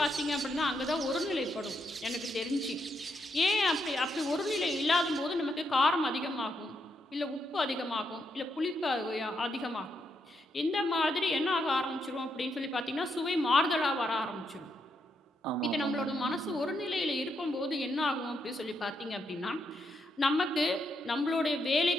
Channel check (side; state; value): both; normal; correlation 0.80